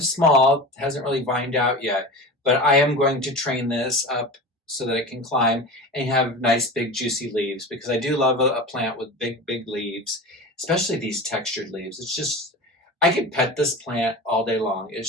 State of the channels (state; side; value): normal; both; correlation 0.31